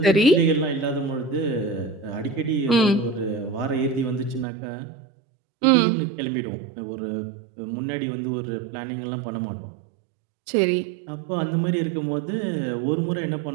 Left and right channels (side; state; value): left; drops out; at 4.5 s